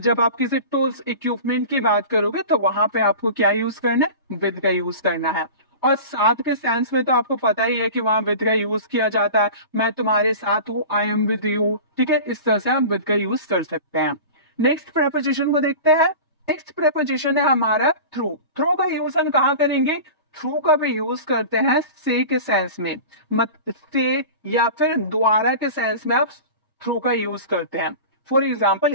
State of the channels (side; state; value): both; inverted; correlation -0.35